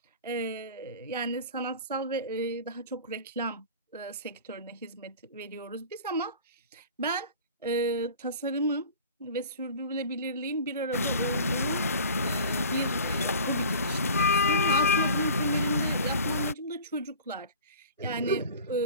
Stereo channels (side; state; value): both; inverted; correlation -0.40